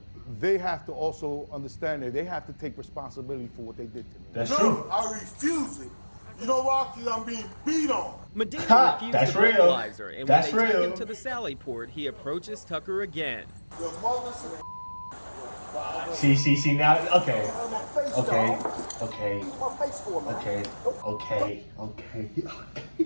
they have to also understand that they have to take responsibility for what they did to me. That's No, true. I refuse it. You know why? Because I'm being beat on. Medina Ha, refused that's the real. breathalyzer, and That's when they real. take him to the Sally Port, he approaches Tucker again. Your mother's See, now, okay. my face, Okay, dog. okay, Use my face for me. okay.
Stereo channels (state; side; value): inverted; both; correlation -1.00